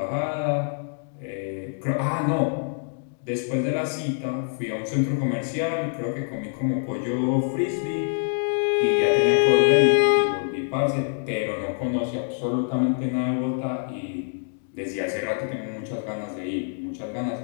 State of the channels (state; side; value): silent; right; digital silence